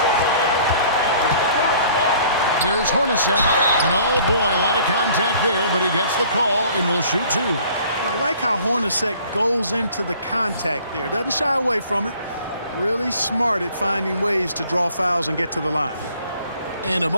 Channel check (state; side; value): inverted; both; correlation -0.54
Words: Here's Hornacek. And oh boy, a lot of contact there, but he gets the call and will shoot 2. Well, I like how Hornacek goes into the contact there. Doesn't shy away from it. Really smart at finding ways to draw fouls and get to the line. And a